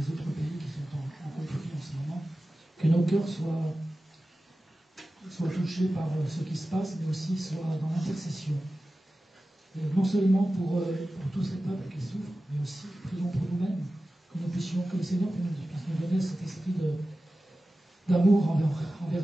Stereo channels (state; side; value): normal; both; correlation 0.95